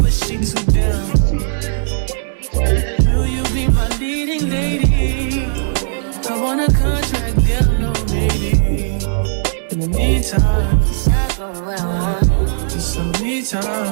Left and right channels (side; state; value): left; silent; digital silence